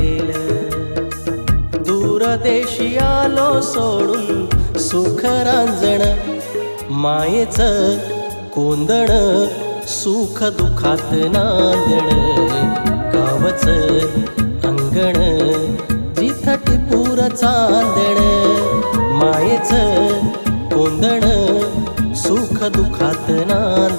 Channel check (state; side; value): inverted; both; correlation -1.00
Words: दूरदेशी आलो सोडून सुख रांजण मायेचं कोंदण सुख दुखात नांदण गावचं अंगण जिथं टिपूर चांदण मायेचं कोंदण सुख दुखात